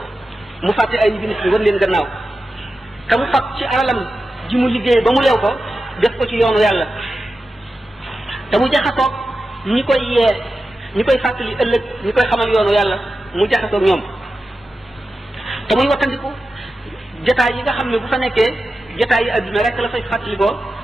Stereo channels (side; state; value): both; normal; correlation 0.92